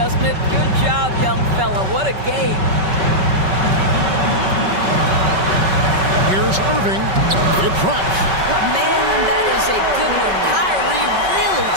it? Good job, young fella. What a game. Here's Irving. It drops. Man, that is a good one. Kyrie really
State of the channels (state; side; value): late; left; 5.3 ms